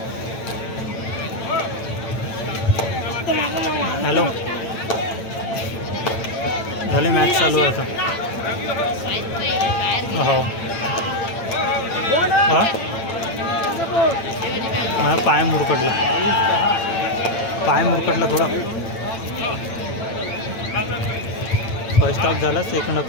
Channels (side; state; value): right; late; 8.9 ms